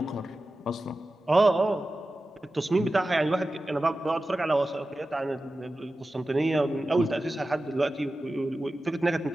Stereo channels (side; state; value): both; normal; correlation 0.94